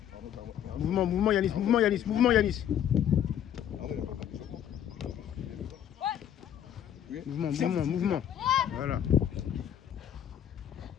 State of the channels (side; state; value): right; quieter; 10.0 dB